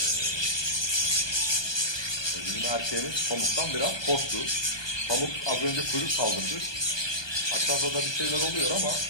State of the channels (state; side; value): late; right; 1.2 ms